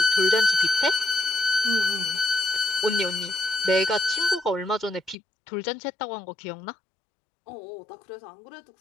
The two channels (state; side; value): drops out; right; at 5.2 s